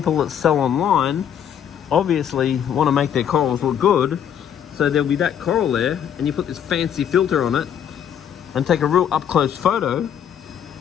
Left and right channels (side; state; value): right; quieter; 9.1 dB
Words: that sell online obviously want to make their corals look good, so there'll be that coral there and you put this fancy filter on it and take a real up close photo